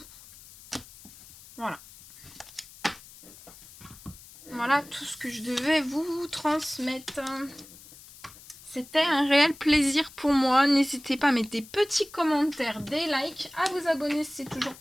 Voilà. Voilà tout ce que je devais vous transmettre. C'était un réel plaisir pour moi. N'hésitez pas à mettre des petits commentaires, des likes, à vous abonner si c'est toujours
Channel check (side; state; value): left; noise; hiss, 20 dB below the sound